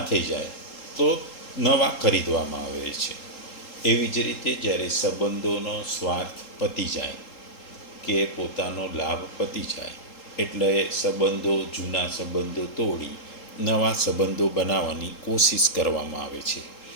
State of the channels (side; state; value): right; late; 3.7 ms